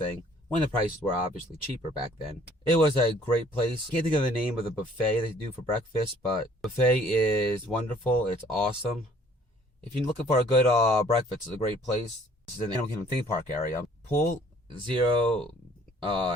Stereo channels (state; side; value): normal; both; correlation 0.58